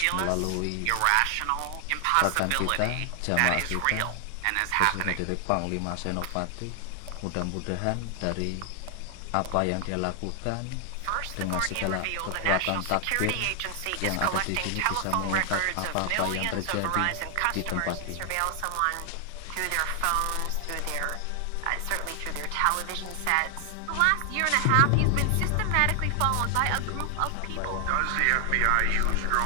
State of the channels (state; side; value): different; both; correlation 0.00